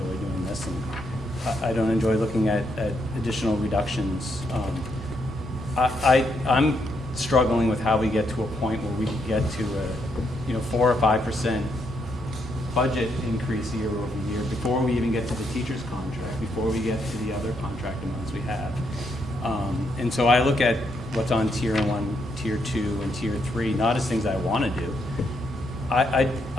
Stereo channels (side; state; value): both; normal; correlation 0.77